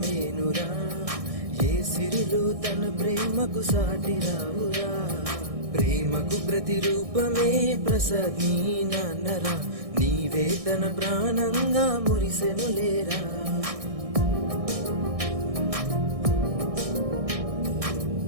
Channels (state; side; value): late; left; 1.6 ms